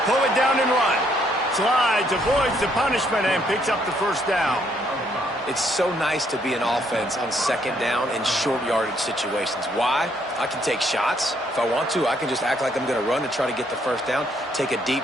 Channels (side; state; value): both; normal; correlation 0.70